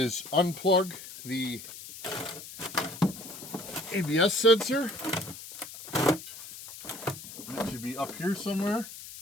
unplug the ABS sensor. It should be up here somewhere.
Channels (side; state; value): left; noise; hiss, 13 dB below the sound